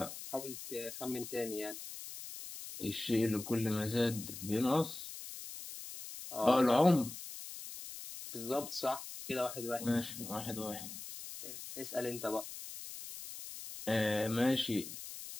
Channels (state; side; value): noise; left; hiss, 10 dB below the sound